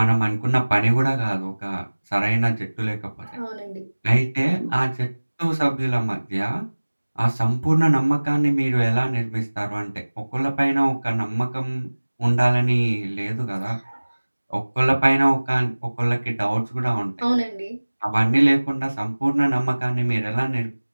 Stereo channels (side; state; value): both; inverted; correlation -1.00